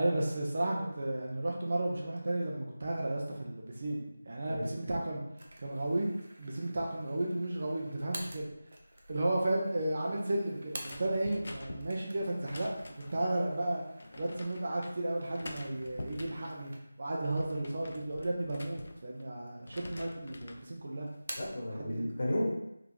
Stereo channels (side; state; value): both; inverted; correlation -0.95